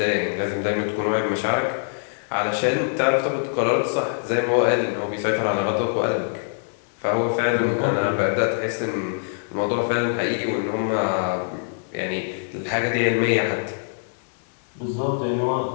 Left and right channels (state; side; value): silent; right; digital silence